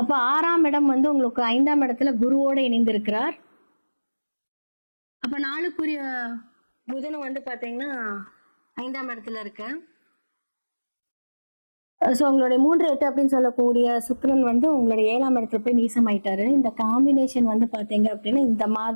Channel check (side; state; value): both; inverted; correlation -1.00